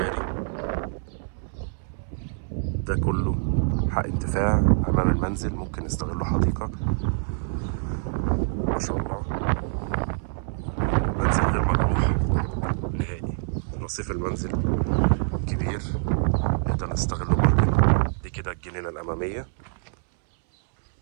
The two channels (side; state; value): left; silent; 61 dB below the other